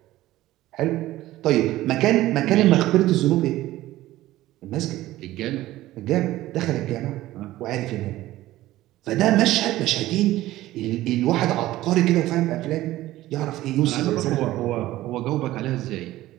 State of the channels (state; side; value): quieter; left; 15.9 dB